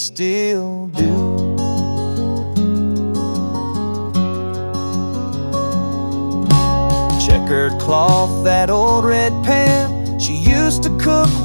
do. Checkered cloth, that old red pan, she used to cook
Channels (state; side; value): inverted; both; correlation -1.00